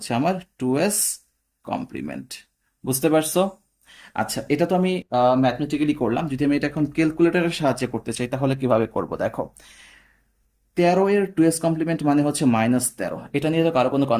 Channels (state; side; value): identical; both; correlation 1.00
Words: আমার 2s কমপ্লিমেন্ট। বুঝতে পারছো? আচ্ছা, এটা তো আমি ম্যাথমেটিক্যালি করলাম। যদি আমি এটা এখন ক্যালকুলেটরের সাহায্যে করতে চাই, তাহলে কিভাবে করব? দেখো, 13 এর 2s কমপ্লিমেন্ট মানে হচ্ছে -13, এটা নিয়ে তো কারো কোনো